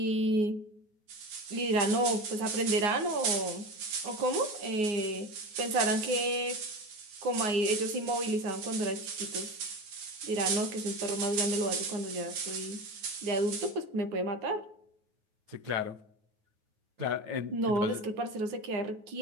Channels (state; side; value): late; left; 9.4 ms